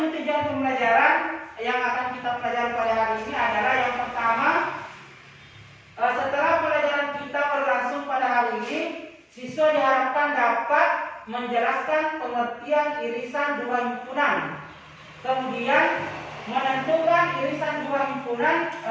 tujuan pembelajaran yang akan kita pelajari pada hari ini adalah yang pertama, setelah pelajaran kita berlangsung pada hari ini, siswa diharapkan dapat menjelaskan pengertian irisan dua himpunan, kemudian menentukan irisan dua himpunan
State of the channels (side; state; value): both; identical; correlation 1.00